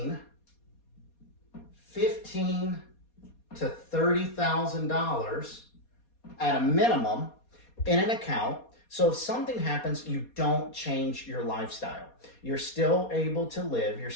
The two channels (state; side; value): late; right; 4.2 ms